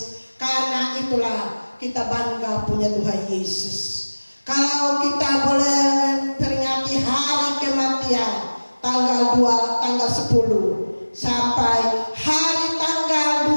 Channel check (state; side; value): inverted; both; correlation -1.00